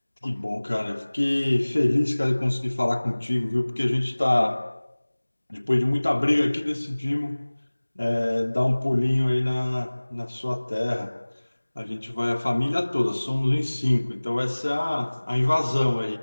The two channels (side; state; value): both; inverted; correlation -1.00